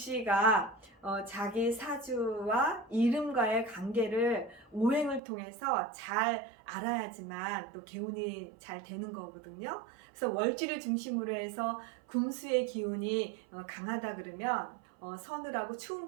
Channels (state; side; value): drops out; left; at 5.2 s